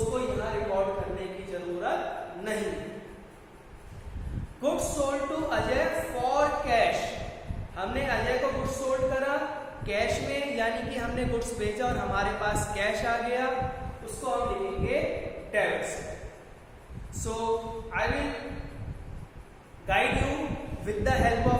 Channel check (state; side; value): identical; both; correlation 1.00